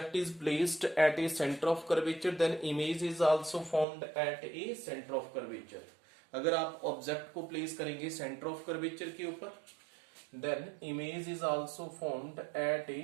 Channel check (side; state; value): left; drops out; at 3.9 s